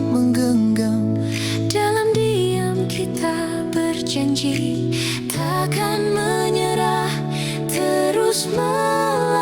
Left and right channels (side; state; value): both; identical; correlation 1.00